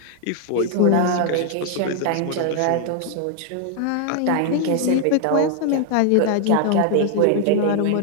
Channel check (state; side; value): different; both; correlation 0.00